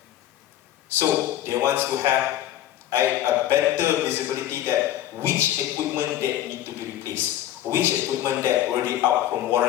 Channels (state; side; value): quieter; right; 12.7 dB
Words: So they want to have a better visibility that which equipment that need to be replaced, which equipment that already out from